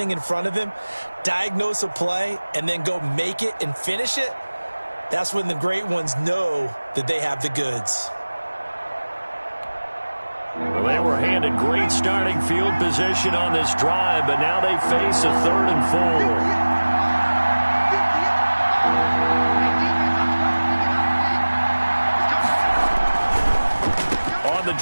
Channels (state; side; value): inverted; both; correlation -1.00